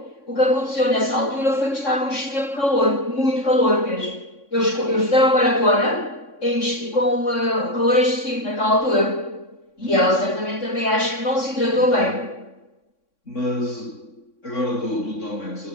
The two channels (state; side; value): late; right; 3.6 ms